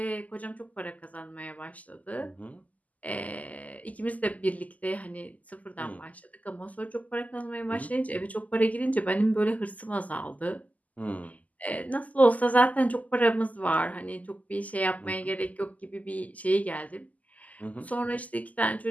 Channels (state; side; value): late; right; 0.076 ms